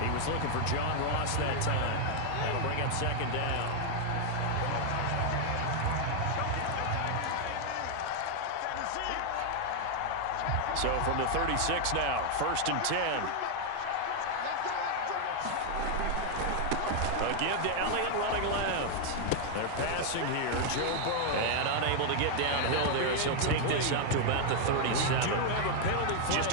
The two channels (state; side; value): different; both; correlation 0.00